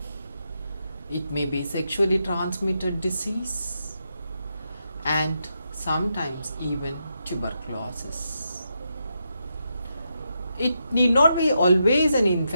It may be sexually transmitted disease and sometimes even tuberculosis. It need not be always an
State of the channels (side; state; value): both; inverted; correlation -0.84